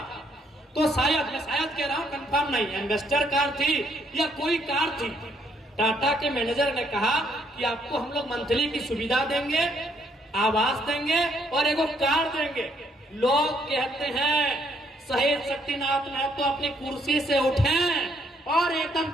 तो शायद, मैं शायद कह रहा हूं, कंफर्म नहीं, एम्बेसडर कार थी या कोई कार थी। टाटा के मैनेजर ने कहा कि आपको हम लोग मंथली की सुविधा देंगे, आवास देंगे और एक कार देंगे। लोग कहते हैं शहीद शक्तिनाथ महतो अपनी कुर्सी से उठे और एकदम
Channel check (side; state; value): both; normal; correlation 0.70